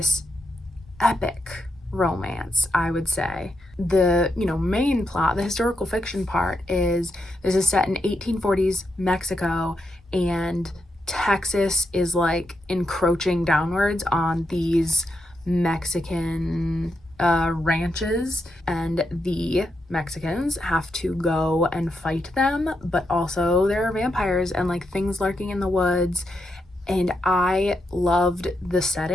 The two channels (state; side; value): normal; both; correlation 0.83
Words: epic romance, I would say. The main plot, the historical fiction part, is this is set in 1840s Mexico, and Texas is like encroaching downwards on these Mexican ranches, and the Mexicans have to go and fight them, but also there are vampires and like things lurking in the woods. And I loved the